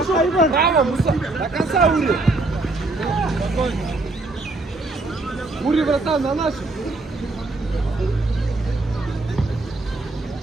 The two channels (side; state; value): left; quieter; 3.1 dB